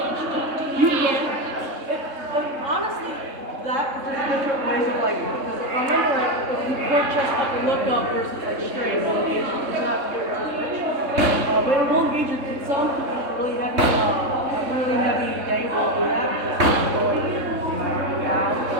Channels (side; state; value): left; late; 3.6 ms